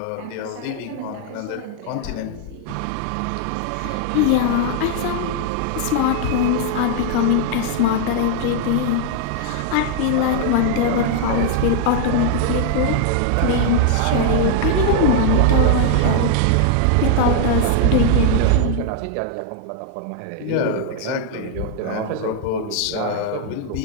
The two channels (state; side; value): different; both; correlation 0.00